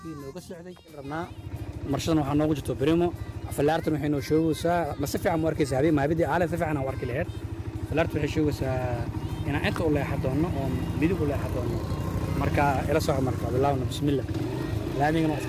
نوجا السعودي ربنا مرشدنا وحنا وجدته بريمو فلارت نحن نشوف سا ما سفع مركز هذه ما بدي على سفع أنا ورك الهير فلارت نشوف سا أنا أنت ولا حدونا أو بدي ولا حدونا مركا إلى صعب مركا بالله بسم الله لا نيجي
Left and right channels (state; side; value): identical; both; correlation 1.00